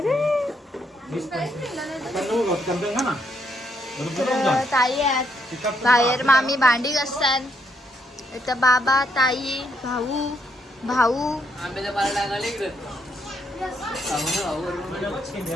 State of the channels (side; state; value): both; normal; correlation 0.74